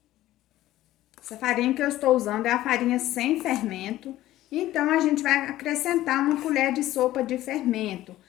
Essa farinha que eu estou usando é a farinha sem fermento, então a gente vai acrescentar uma colher de sopa de fermento.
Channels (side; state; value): right; quieter; 14.9 dB